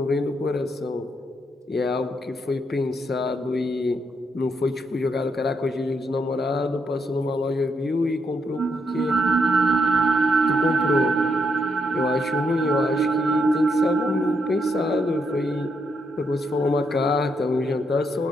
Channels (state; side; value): normal; both; correlation 0.78